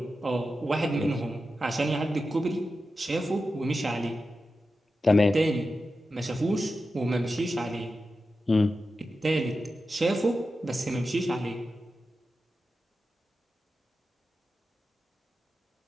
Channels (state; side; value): normal; both; correlation 0.91